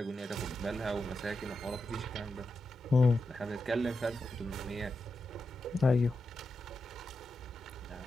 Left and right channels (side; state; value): both; normal; correlation 0.88